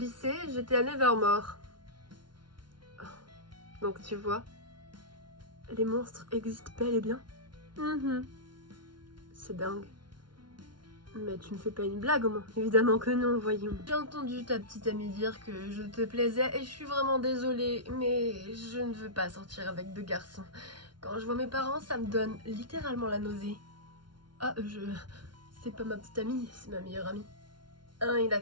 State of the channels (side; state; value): left; late; 0.71 ms